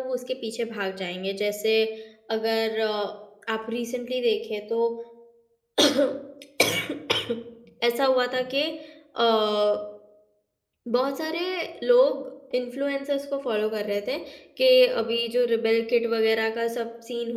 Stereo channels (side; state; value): both; identical; correlation 1.00